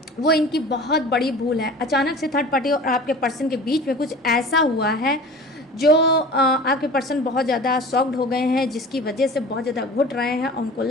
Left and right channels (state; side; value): normal; both; correlation 0.40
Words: वो इनकी बहुत बड़ी भूल है। अचानक से थर्ड पार्टी और आपके पर्सन के बीच में कुछ ऐसा हुआ है जो आपके पर्सन बहुत ज़्यादा शॉक्ड हो गए हैं, जिसकी वजह से बहुत ज़्यादा घुट रहे हैं और उनको